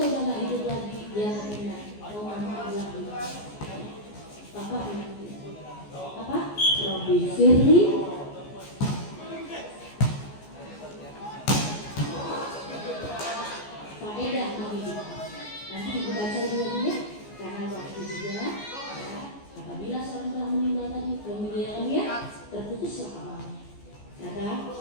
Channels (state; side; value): late; right; 14 ms